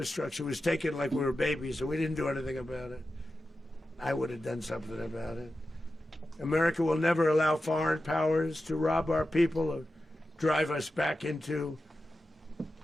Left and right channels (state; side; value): normal; both; correlation 0.92